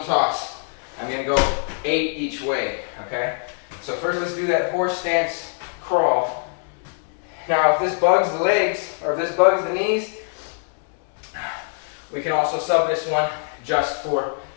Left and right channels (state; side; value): silent; right; 57 dB below the other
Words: toss. I'm gonna go 8 each way, okay? So first let's do that horse stance crawl. Now if this bugs the legs, or if this bugs the knees, we can also sub this one just for